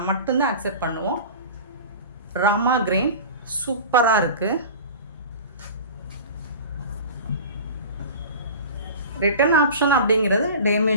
மட்டும்தான் அக்செப்ட் பண்ணுவோம். ராமா கிரீன் சூப்பராக இருக்குது. ரிட்டர்ன் ஆப்ஷன் அப்படிங்கிறது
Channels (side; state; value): both; inverted; correlation -0.35